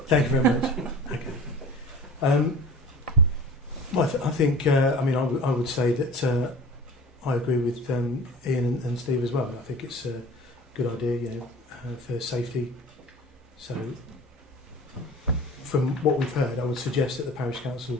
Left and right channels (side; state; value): both; normal; correlation 0.40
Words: Thank you very much. Okay. Well, I think. I mean, I would say that I agree with Ian and Steve as well. I think it's a good idea, you know, for safety. So, from what we've heard, I would suggest that the parish